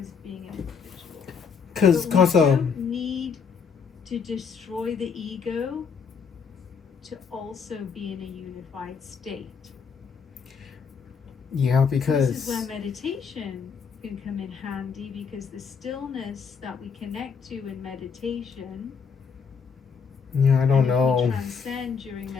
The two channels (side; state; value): right; quieter; 6.0 dB